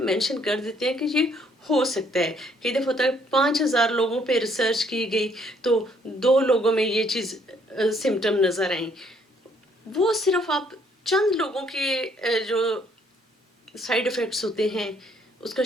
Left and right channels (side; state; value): both; normal; correlation 0.66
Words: कर देते हैं कि ये हो सकता है। कई दफ़ा होता है 5000 लोगों पे रिसर्च की गई तो 2 लोगों में ये चीज़ सिम्टम नज़र आई। वो सिर्फ आप चंद लोगों के जो साइड इफ़ेक्ट्स होते हैं उसका